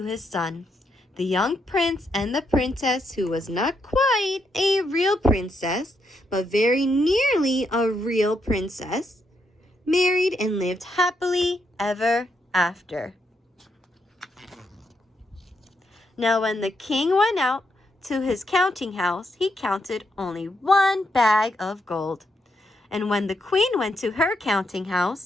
his son. The young prince and the princess, who was not quite a real princess, but very nearly a real princess, married and lived happily ever after. Now when the king went out to his counting house, he counted only 1 bag of gold. And when the queen went to her counting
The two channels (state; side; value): normal; both; correlation 0.79